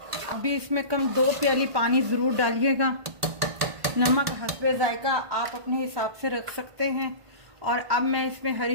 अभी इसमें कम 2 प्याली पानी ज़रूर डालिएगा। नमक हस्बे जायका आप अपने हिसाब से रख सकते हैं। और अब मैं इसमें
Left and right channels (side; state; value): left; late; 1.5 ms